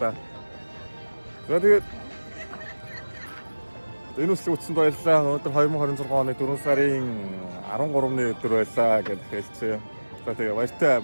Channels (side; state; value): both; inverted; correlation -1.00